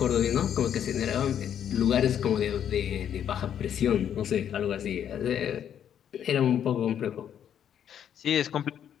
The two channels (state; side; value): quieter; right; 9.3 dB